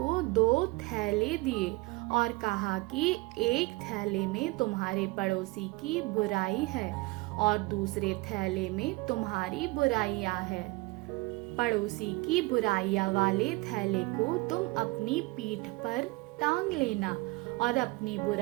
2 थैले दिए और कहा कि एक थैले में तुम्हारे पड़ोसी की बुराई है और दूसरे थैले में तुम्हारी बुराइयां है। पड़ोसी की बुराइयां वाले थैले को तुम अपनी पीठ पर टांग लेना और अपनी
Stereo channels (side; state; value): left; quieter; 23.4 dB